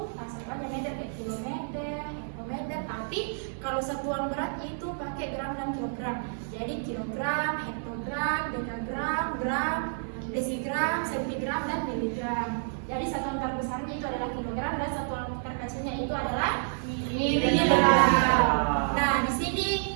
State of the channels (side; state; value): left; silent; digital silence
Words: satuannya meter kayak kilometer, hektometer, tapi kalau satuan berat itu pakai gram dan kilogram. Jadi kilogram, hektogram, dekagram, gram, desigram, sentigram, dan miligram. Jadi satuan terbesarnya itu adalah kilogram dan satuan terkecilnya itu adalah miligram. Nah, di sini